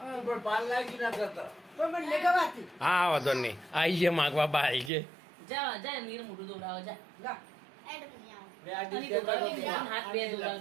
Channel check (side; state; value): left; drops out; at 4.9 s